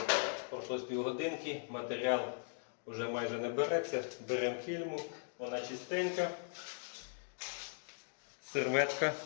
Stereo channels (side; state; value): right; silent; digital silence